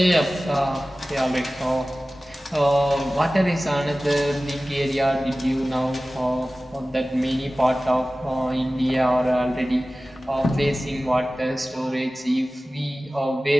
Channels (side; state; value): both; normal; correlation 0.97